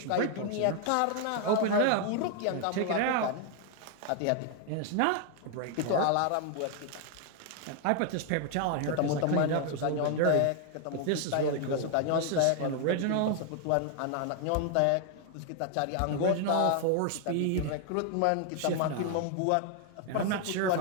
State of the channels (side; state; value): both; different; correlation 0.00